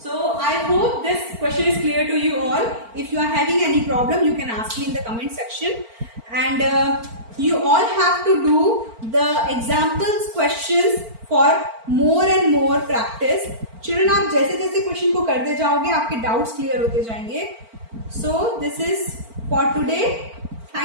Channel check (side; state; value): left; late; 4.4 ms